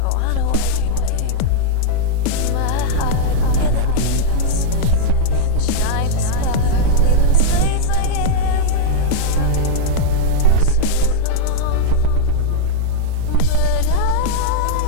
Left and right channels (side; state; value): both; different; correlation -0.01